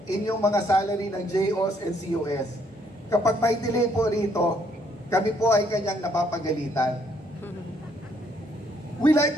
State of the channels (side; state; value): both; normal; correlation 0.69